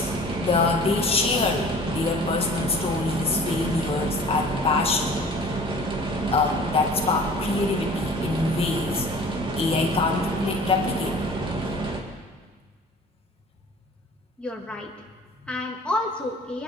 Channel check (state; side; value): normal; both; correlation 0.46